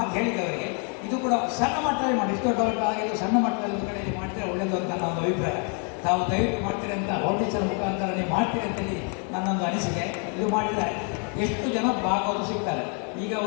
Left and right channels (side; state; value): right; quieter; 39.9 dB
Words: ಹೇಳಿದವರಿಗೆ ಇದು ಕೂಡ ಸಣ್ಣ ಮಟ್ಟದಲ್ಲಿ ಮಾಡಿ, ಇಷ್ಟು ದೊಡ್ಡವರಿಗೆ ಆಗಿದ್ದು ಸಣ್ಣ ಮಟ್ಟದಲ್ಲಿ ಒಂದು ಕಡೆಯಲ್ಲಿ ಮಾಡ್ತೀರಾ ಒಳ್ಳೆಯದು ಅಂತ ನನ್ನ ಒಂದು ಅಭಿಪ್ರಾಯ. ತಾವು ದಯವಿಟ್ಟು ಮಾಡ್ತೀರಿ ಅಂತ ಫೌಂಡೇಶನ್ ಮುಖಾಂತರ ನೀವು ಮಾಡ್ತೀರಿ ಅಂತೇಳಿ ನನ್ನೊಂದು ಅನಿಸಿಕೆ. ಇದು ಮಾಡಿದರೆ ಎಷ್ಟು ಜನ ಭಾಗವತರು ಸಿಗ್ತಾರೆ. ಈಗ